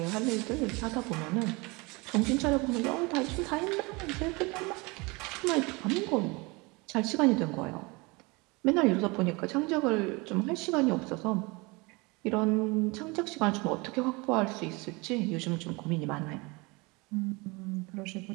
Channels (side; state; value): left; quieter; 26.2 dB